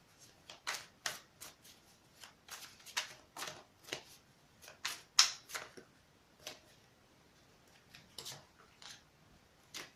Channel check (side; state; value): both; identical; correlation 1.00